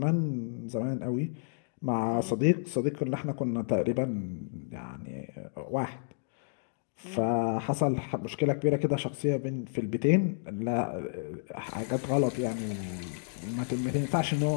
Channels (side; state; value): right; silent; digital silence